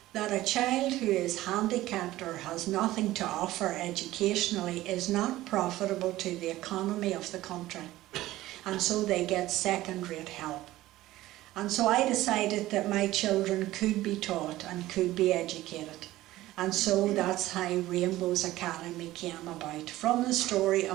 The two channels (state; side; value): quieter; left; 16.2 dB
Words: that a child who is handicapped or has nothing to offer educationally is not profitable to the economy of the country. And so they get second-rate help. And so I decided that my children could be taught and could be educated. And so that's how Rainbows Academy came about, from the story